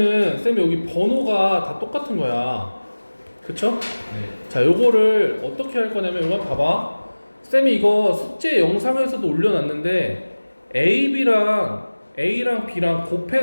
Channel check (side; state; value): both; inverted; correlation -1.00